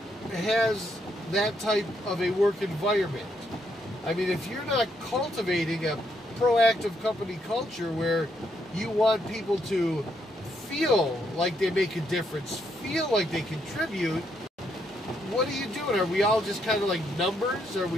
has that type of a work environment. I mean, if you're not cultivating a proactive company culture where you want people to feel like they make a difference, feel like they contribute, what are you doing? Are we all just kind of like numbers? Are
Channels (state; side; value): normal; both; correlation 0.75